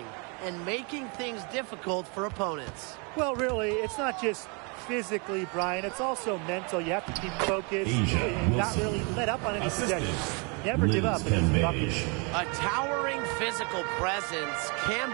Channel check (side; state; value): left; quieter; 33.4 dB